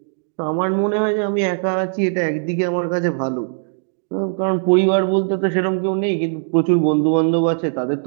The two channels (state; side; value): silent; left; digital silence